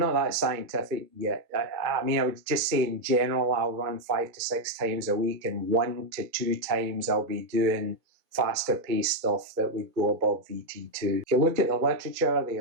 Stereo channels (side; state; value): left; late; 2.2 ms